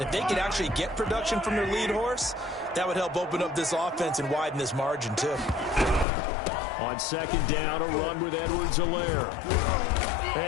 If they could actually get production from their lead horse, that would help open up this offense and widen this margin, too. On second down, a run with Edwards-Helaire.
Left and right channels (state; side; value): drops out; right; at 6.1 s